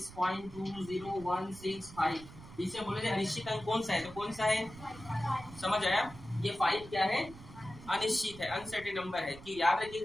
इसे बोले अनिश्चित अंक कौन सा है, तो कौन सा है? समझ आया? ये 5 क्या है? अनिश्चित है, अनसर्टेन नंबर है। कि याद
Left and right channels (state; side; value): noise; right; rumble, 17 dB below the sound